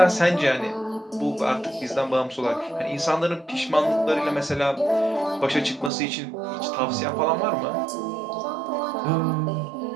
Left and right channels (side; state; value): left; drops out; at 5.9 s